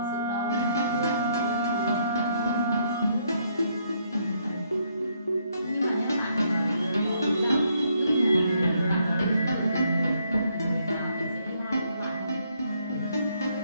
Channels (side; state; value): both; inverted; correlation -0.72